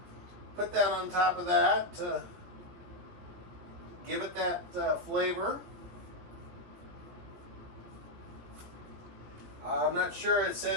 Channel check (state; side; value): late; left; 17 ms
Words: put that on top of that to give it that flavor. I'm not sure, it